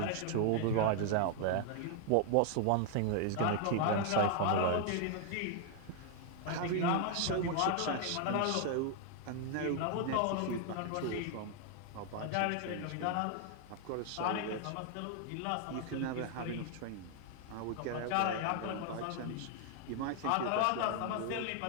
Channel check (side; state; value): both; different; correlation 0.00